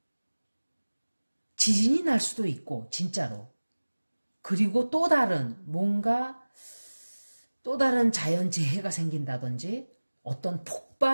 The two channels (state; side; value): inverted; both; correlation -1.00